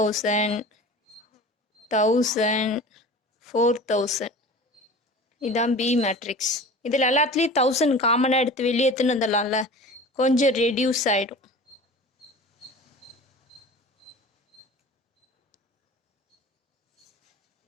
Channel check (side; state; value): both; normal; correlation 0.38